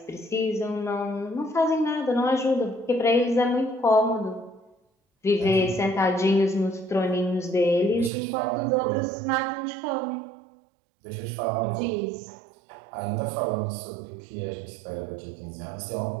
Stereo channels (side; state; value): left; drops out; at 8.1 s